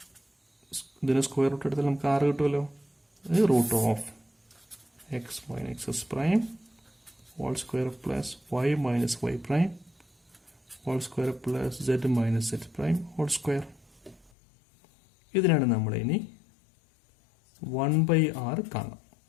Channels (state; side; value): drops out; right; at 14.3 s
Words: ഇതിന് സ്ക്വയർ റൂട്ട് എടുത്താൽ നമുക്ക് 6 കിട്ടുമല്ലോ. Root of x minus X prime whole square plus Y minus Y prime whole square plus Z minus Z prime whole square. ഇതിനാണ് നമ്മൾ ഇനി 1/r കാണാം.